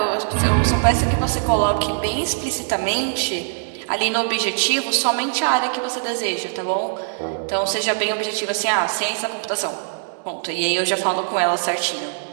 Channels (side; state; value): left; silent; digital silence